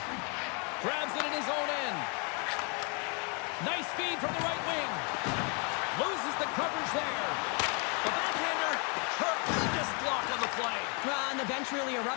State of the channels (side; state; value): right; quieter; 35.1 dB